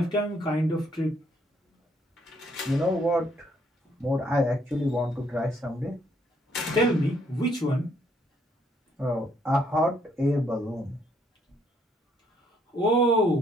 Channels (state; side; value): normal; both; correlation 0.69